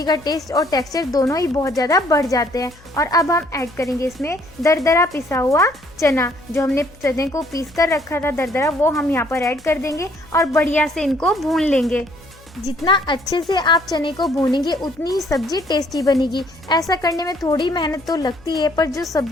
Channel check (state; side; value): noise; left; hum, 25 dB below the sound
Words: का टेस्ट और टेक्सचर दोनों ही बहुत ज़्यादा बढ़ जाते हैं। और अब हम ऐड करेंगे इसमें दरदरा पिसा हुआ चना। जो हमने चने को पीस कर रखा था दरदरा, वो हम यहाँ पर ऐड कर देंगे और बढ़िया से इनको भून लेंगे। जितना अच्छे से आप चने को भूनेंगे उतनी ही सब्जी टेस्टी बनेगी। ऐसा करने में थोड़ी मेहनत तो लगती है, पर जो